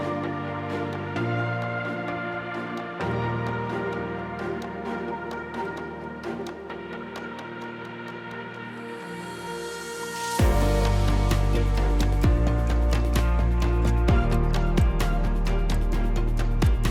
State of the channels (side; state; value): both; identical; correlation 1.00